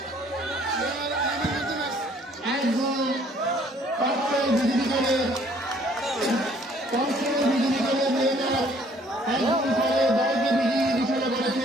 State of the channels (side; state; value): both; normal; correlation 0.60